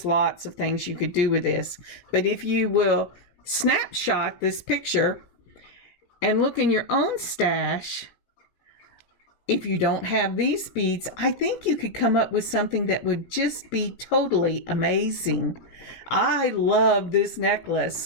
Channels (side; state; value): right; late; 17 ms